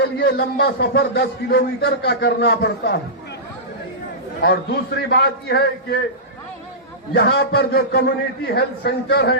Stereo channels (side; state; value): both; normal; correlation -0.17